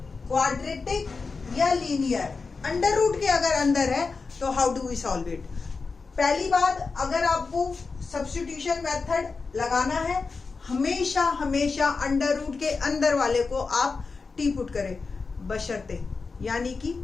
क्वाड्रेटिक या लीनियर, अंडर रूट के अगर अंदर है तो how do we solve it. पहली बात, अगर आपको सब्स्टिट्यूशन मेथड लगाना है हमेशा हमेशा अंडर रूट के अंदर वाले को आप टी पुट करें, बशर्ते यानी कि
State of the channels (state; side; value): quieter; right; 4.5 dB